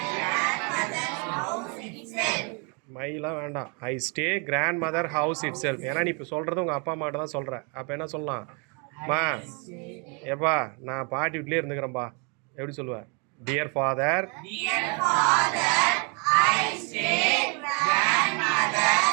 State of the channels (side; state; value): left; quieter; 34.8 dB